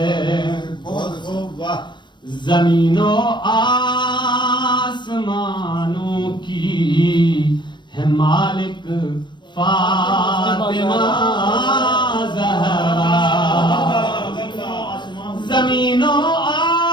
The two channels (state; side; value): late; right; 0.22 ms